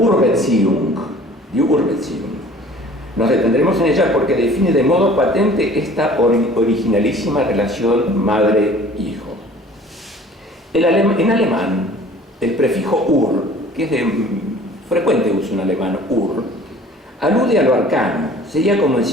die Urbeziehung. Nos detendremos en ella porque define de modo patente esta originalísima relación madre-hijo. En alemán, el prefijo ur, que es de frecuente uso en alemán, ur, alude a lo arcano, sería como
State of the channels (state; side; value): normal; both; correlation 0.49